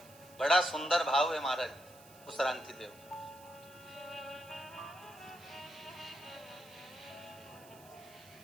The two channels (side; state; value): right; noise; hiss, 22 dB below the sound